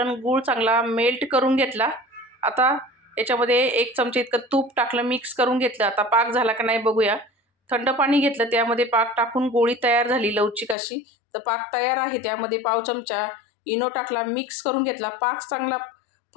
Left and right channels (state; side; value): drops out; right; at 10.8 s